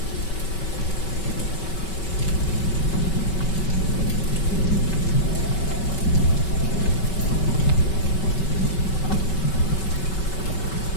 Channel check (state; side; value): late; right; 5.3 ms